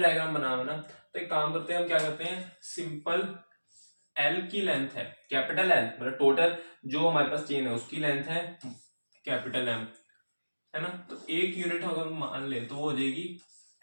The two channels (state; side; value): inverted; both; correlation -1.00